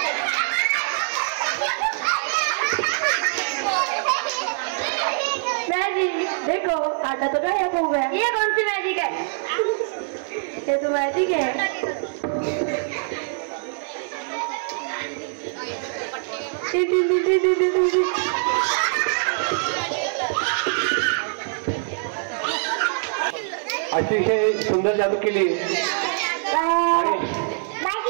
देखो आटा तो गायब हो गया। ये कौन सी मैजिक है? ये तो मैजिक है। अतिशय सुंदर जादू केली।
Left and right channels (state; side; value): silent; left; digital silence